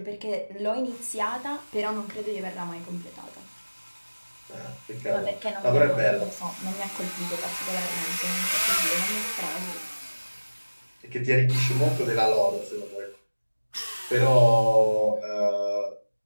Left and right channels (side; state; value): both; inverted; correlation -1.00